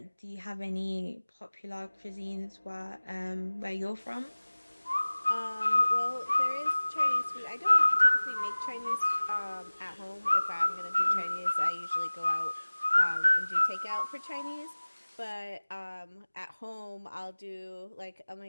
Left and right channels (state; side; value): inverted; both; correlation -1.00